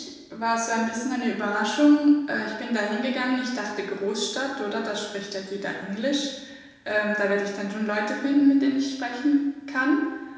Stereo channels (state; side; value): identical; both; correlation 1.00